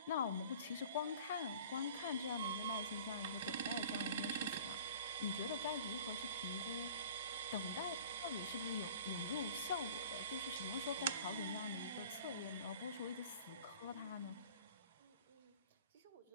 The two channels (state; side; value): inverted; both; correlation -0.45